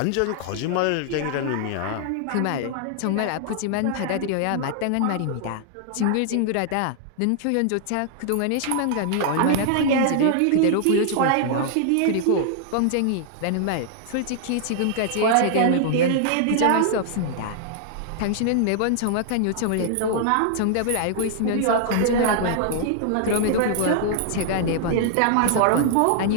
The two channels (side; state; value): both; different; correlation -0.01